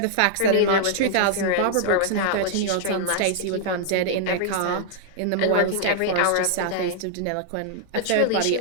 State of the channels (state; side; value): different; both; correlation -0.01